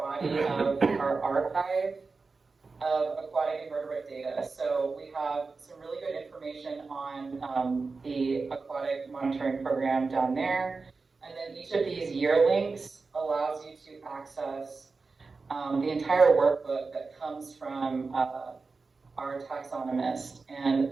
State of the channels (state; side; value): quieter; left; 4.2 dB